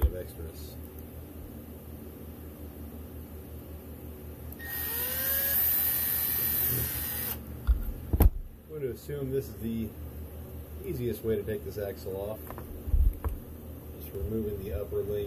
of extras. I'm going to assume this is the easiest way to take this axle off. Just removing the upper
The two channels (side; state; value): both; identical; correlation 1.00